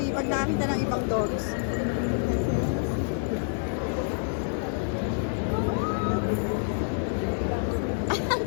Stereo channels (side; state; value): right; silent; digital silence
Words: pag nakakita ng ibang dogs. Ang